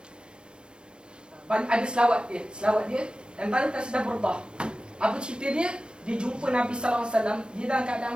Ada selawat dia dan tadi kasidah burdah. Apa cerita dia? Dia jumpa Nabi sallallahu alaihi wasallam, dia dalam keadaan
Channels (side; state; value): left; late; 0.055 ms